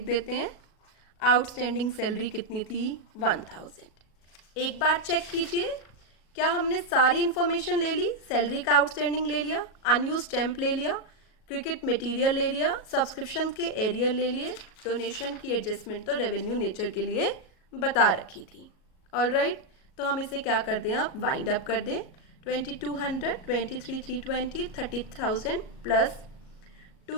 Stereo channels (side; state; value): right; late; 37 ms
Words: देते हैं। आउटस्टैंडिंग सैलरी कितनी थी, 1000। एक बार चेक कीजिए क्या हमने सारी इन्फॉर्मेशन ले ली। सैलरी का आउटस्टैंडिंग ले लिया, अनयूज स्टैम्प ले लिया, क्रिकेट मटेरियल ले लिया, सब्सक्रिप्शन के एरियर ले लिए, डोनेशन की एडजस्टमेंट तो रेवेन्यू नेचर के लिए बता रखी थी। ऑलराइट, तो हम इसे क्या कर दें, आप वाइंड अप कर दें। 2200, 23,320, 30,000 plus